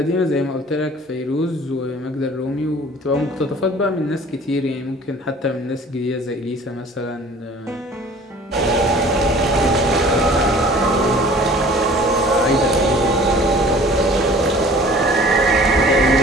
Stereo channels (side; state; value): both; normal; correlation 0.48